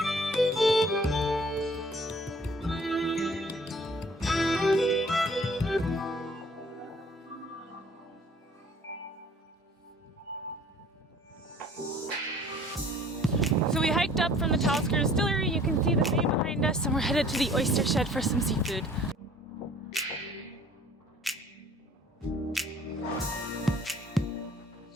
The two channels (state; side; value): normal; both; correlation 0.53